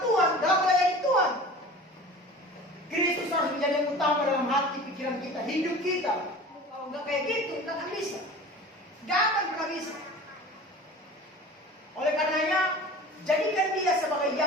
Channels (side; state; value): both; normal; correlation 0.39